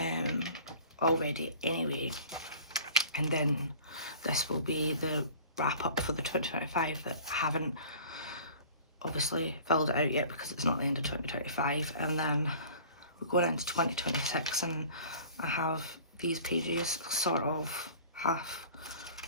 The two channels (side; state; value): both; inverted; correlation -0.45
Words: already anyway. And then this will be the wrap up for the 2025 that I haven't obviously filled it out yet because it's not the end of 2025. And then we're going into 2026, and I have these pages sort of half